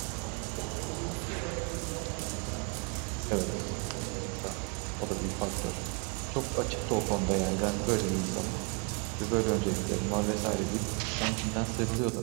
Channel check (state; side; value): quieter; left; 34.3 dB